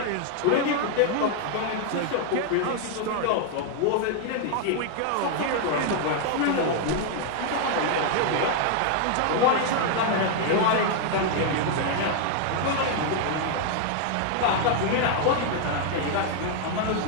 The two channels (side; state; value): both; different; correlation 0.00